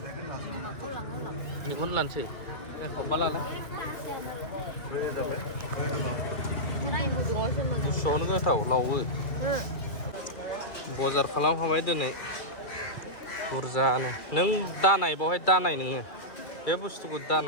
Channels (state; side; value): late; right; 2.4 ms